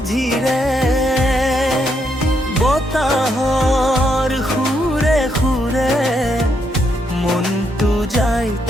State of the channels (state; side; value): normal; both; correlation 0.77